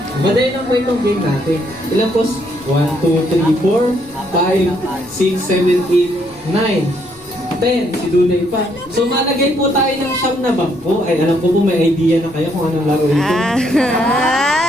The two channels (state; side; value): noise; left; rumble, 26 dB below the sound